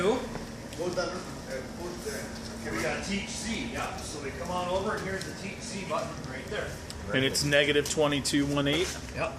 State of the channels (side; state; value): both; identical; correlation 1.00